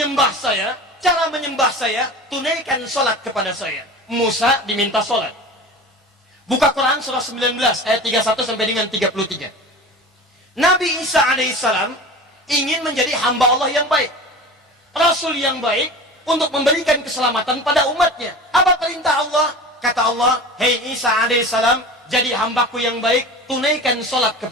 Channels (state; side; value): normal; both; correlation 0.34